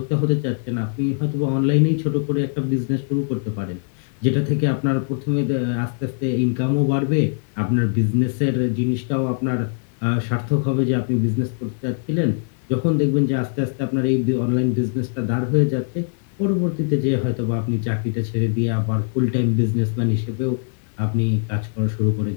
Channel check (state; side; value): silent; right; digital silence